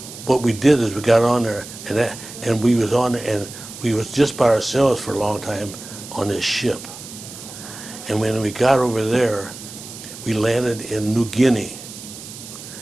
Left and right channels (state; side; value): noise; right; hiss, 14 dB below the sound